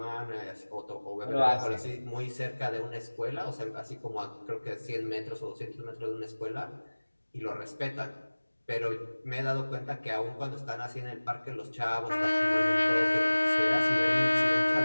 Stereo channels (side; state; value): both; inverted; correlation -1.00